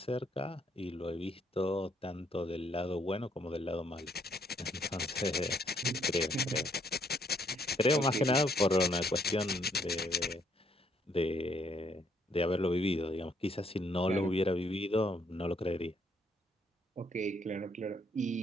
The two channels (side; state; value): both; normal; correlation 0.69